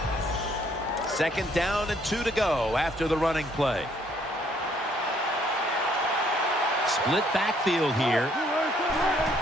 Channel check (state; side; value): normal; both; correlation 0.66